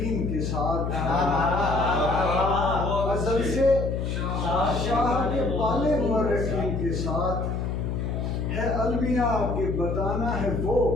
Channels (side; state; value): left; noise; hum, 2 dB below the sound